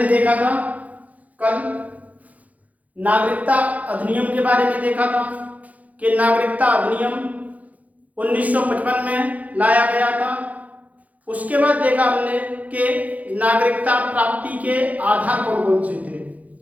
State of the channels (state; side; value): late; left; 0.073 ms